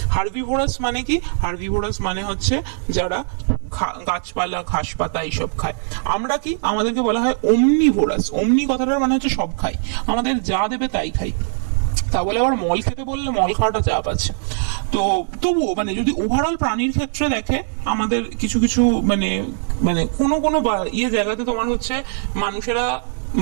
হার্বিভোরাস মানে কি? হার্বিভোরাস মানে হচ্ছে যারা গাছপালা ঘাস পাতা এইসব খায়। আমরা কি? আমাদেরকে বলা হয় ওমনিভোরাস। ওমনি কথাটার মানে হচ্ছে সব খাই, আমাদের যা দেবে তাই খাই। তা বলে আবার মল খেতে বললে মল খাওয়াটা চাপ আছে। তো তবুও মানে যদি ওভারঅল প্রাণীর ক্ষেত্রে দেখে, আমাদের কিছু কিছু মানে মানে কোনো কোনো জায়গাতে তোমার হচ্ছে মানুষেরা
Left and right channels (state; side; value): silent; left; digital silence